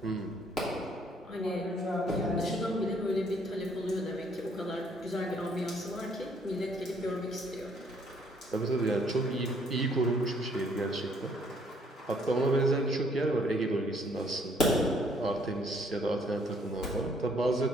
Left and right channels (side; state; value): both; normal; correlation 0.64